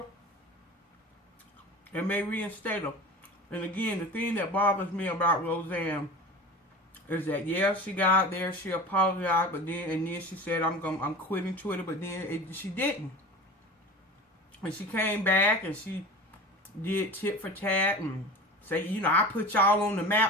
it may reinstate her. And again, the thing that bothers me about Rosanne is that, yeah, she got out there, she apologized, but then she said, I'm quitting Twitter, but then she didn't. And she came back and she did tit for tat and say, you know, I put y'all on the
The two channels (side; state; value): both; normal; correlation 0.35